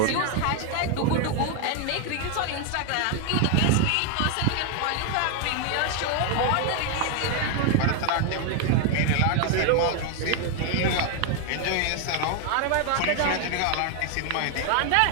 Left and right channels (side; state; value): both; different; correlation 0.00